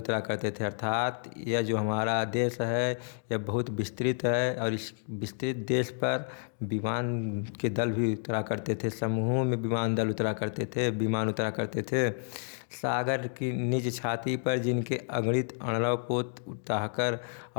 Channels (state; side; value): silent; right; digital silence